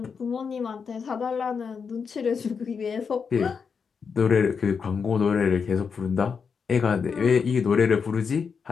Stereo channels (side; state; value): right; quieter; 5.9 dB